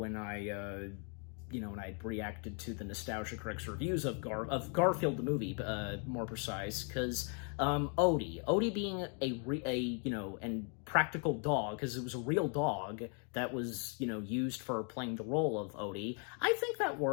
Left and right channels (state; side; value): quieter; right; 39.6 dB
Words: I reacted to the Nostalgia Critic's reviews of Garfield the movie, more precise, because Odie being a practical dog, because it was a real dog that was, used for playing the role of Odie. I think that